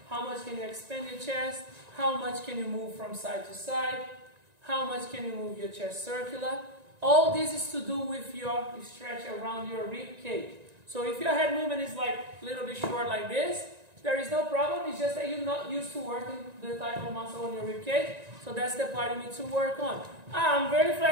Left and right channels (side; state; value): left; late; 1.9 ms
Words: how much can you expand your chest, how much can you move from side to side, how much can you move your chest circular. All this is to do with your stretch around your rib cage. So if your head movement is like a little bit short like this, there is no problem. It's just that you're not used to working the type of muscle on your rib cage. So that's the part you need to work on. I'm very